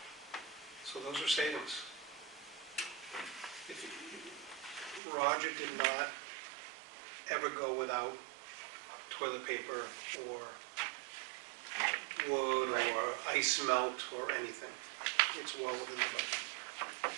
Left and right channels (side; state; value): left; drops out; at 5.0 s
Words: So those are savings. Roger did not ever go without toilet paper or wood or ice melt or anything. It's well within the budget.